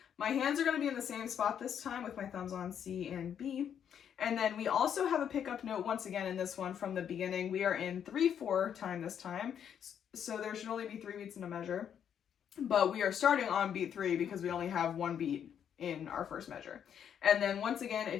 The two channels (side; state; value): right; quieter; 8.6 dB